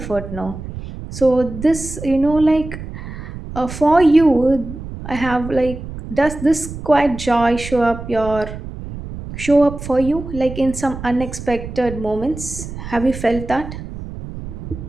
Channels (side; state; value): right; noise; rumble, 10 dB below the sound